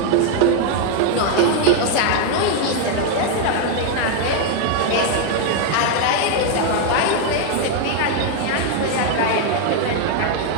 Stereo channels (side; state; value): both; different; correlation 0.00